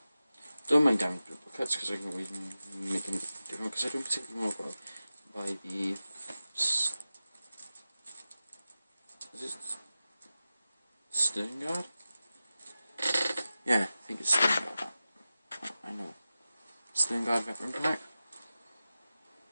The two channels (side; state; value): both; inverted; correlation -0.94